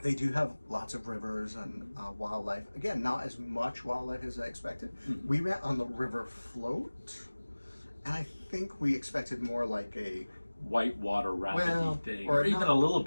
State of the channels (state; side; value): inverted; both; correlation -1.00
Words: they do have lots of rivers and wildlife. Again, not as much wildlife as I expected. We went on the river float, and I think we expected more like a white water rafting thing, or even a little